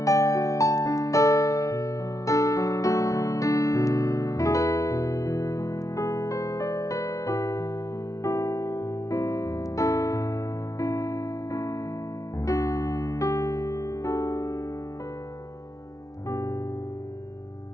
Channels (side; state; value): right; late; 0.16 ms